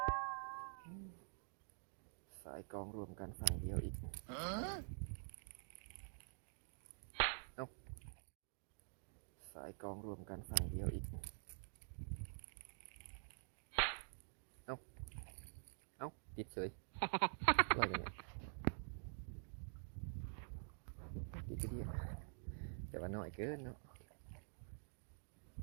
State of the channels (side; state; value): left; silent; digital silence